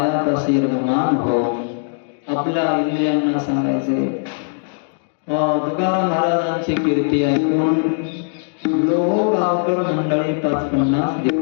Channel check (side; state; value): right; silent; digital silence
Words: रममान हो. आपल्या इंद्रियांना सांगायचे. तुकाराम महाराजांची कीर्ती ऐकून लोह गावकर मंडळी 550